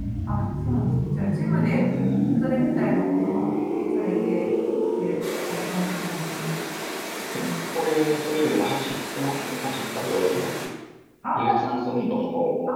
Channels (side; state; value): both; identical; correlation 1.00